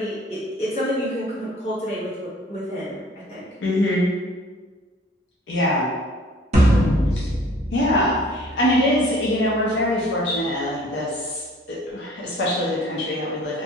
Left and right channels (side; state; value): both; normal; correlation 0.52